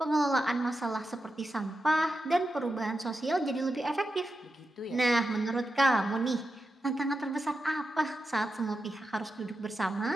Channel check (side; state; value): both; normal; correlation 0.89